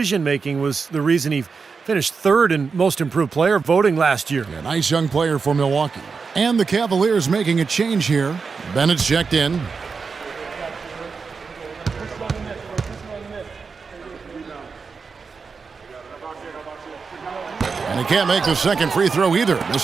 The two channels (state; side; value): quieter; left; 5.1 dB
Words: was the reason he finished 3rd in most improved player voting last year. A nice young player for Milwaukee. And the Cavaliers making a change here. Bennett's checked in. And he can't make the second free throw either,